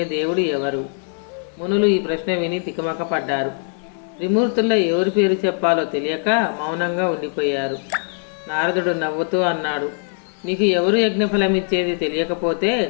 దేవుడు ఎవరు? మునులు ఈ ప్రశ్న విని తికమక పడ్డారు. త్రిమూర్తుల్లో ఎవరి పేరు చెప్పాలో తెలియక మౌనంగా ఉండిపోయారు. నారదుడు నవ్వుతూ అన్నాడు: మీకు ఎవరు యజ్ఞఫలం ఇచ్చేది తెలియకపోతే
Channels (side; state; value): right; silent; 59 dB below the other